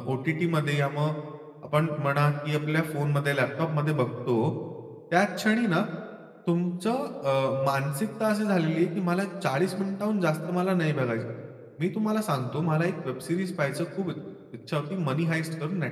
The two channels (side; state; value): both; identical; correlation 1.00